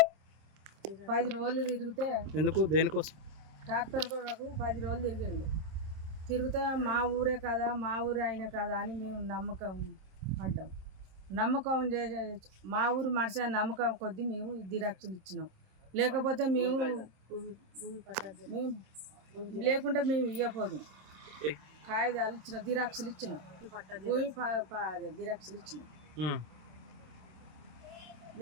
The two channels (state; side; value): late; left; 26 ms